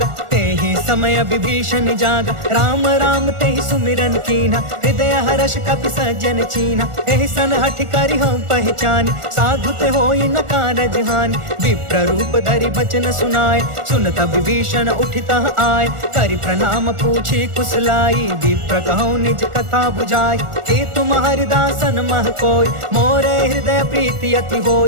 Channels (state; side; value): late; left; 1.4 ms